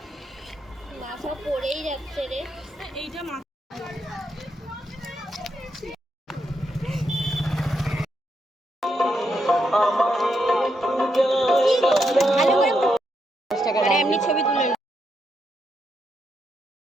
মাথা পড়েই যাচ্ছে রে। এইটা এমনি ছবি তুলে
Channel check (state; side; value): normal; both; correlation 0.81